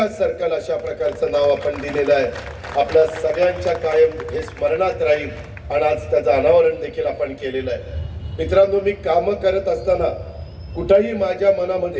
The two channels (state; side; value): identical; both; correlation 1.00